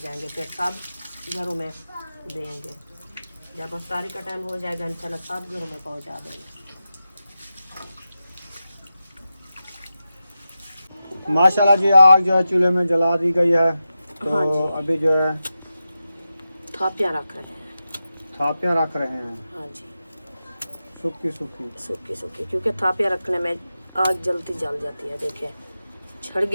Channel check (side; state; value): both; inverted; correlation -0.91